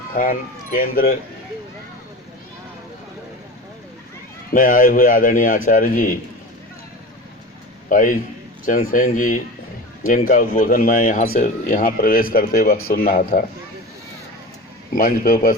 केंद्र में आए हुए आदरणीय आचार्य जी भाई चंद्रसेन जी, जिनका उद्बोधन मैं यहाँ प्रवेश करते वक्त सुन रहा था। मंच पर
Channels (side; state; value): both; normal; correlation 0.31